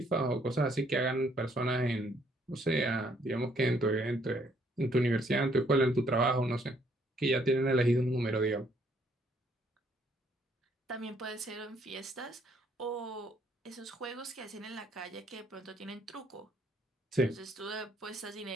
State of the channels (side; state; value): both; normal; correlation 0.67